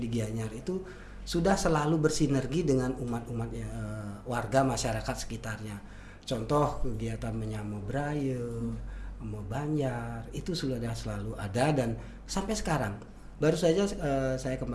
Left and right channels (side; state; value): both; identical; correlation 1.00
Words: Gianyar itu sudah selalu bersinergi dengan umat-umat warga masyarakat sekitarnya. Contoh kegiatan menyamo Braille, Banjar, itu sudah selalu ada dan sampai sekarang. Baru saja saya